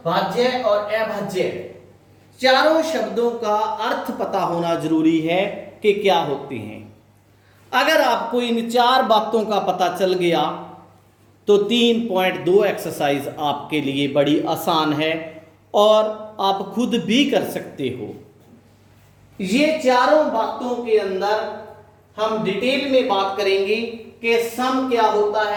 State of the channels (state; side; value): identical; both; correlation 1.00